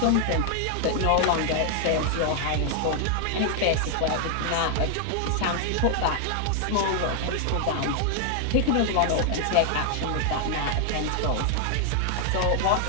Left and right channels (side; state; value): both; different; correlation 0.00